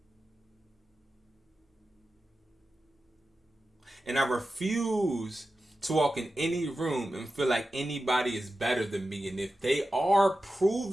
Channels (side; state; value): both; normal; correlation 0.92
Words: And I refuse to walk in any room and feel like anybody is better than me. And if they are